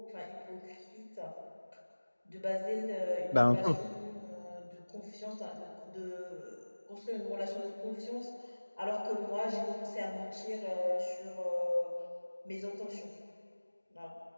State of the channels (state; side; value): inverted; both; correlation -1.00